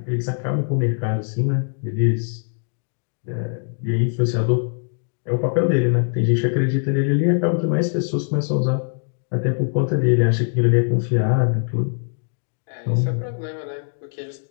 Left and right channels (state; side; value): silent; right; digital silence